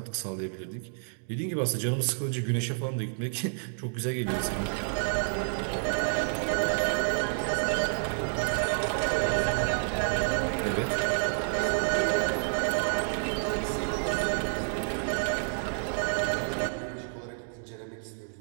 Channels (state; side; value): silent; left; digital silence